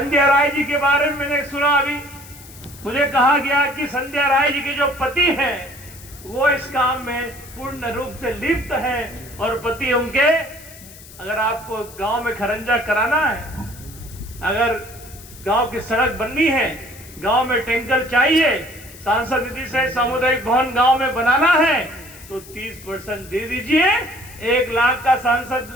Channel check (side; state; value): left; noise; hiss, 19 dB below the sound